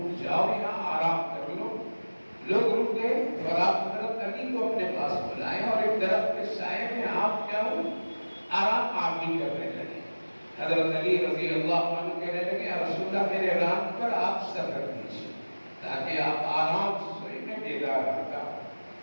جاؤ، یہاں آرام کر لو۔ لوگ رک گئے اور آپ حضرت علی کو اپنے پاس بلائیں اور ایک درخت کے سائے میں آپ کیا ہو آرام آپ بھی کرنے لگے۔ حضرت علی رضی اللہ عنہ کہنے لگے یا رسول اللہ میرے ران پر آپ سر رکھ دیجیے تاکہ آپ آرام سے سوئیں، میں بیدار رہتا ہوں۔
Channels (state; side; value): inverted; both; correlation -1.00